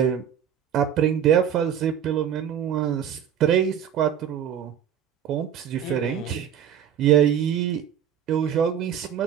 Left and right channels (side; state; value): left; quieter; 9.1 dB